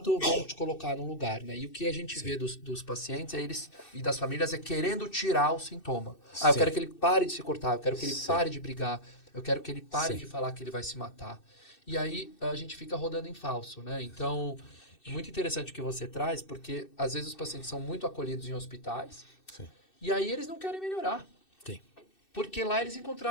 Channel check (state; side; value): late; right; 2.6 ms